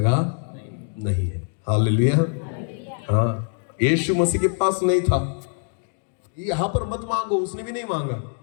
नहीं है। हालेलुया। हाँ, यीशु मसीह के पास नहीं था। यहां पर मत मांगो, उसने भी नहीं मांगा।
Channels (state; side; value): silent; right; 58 dB below the other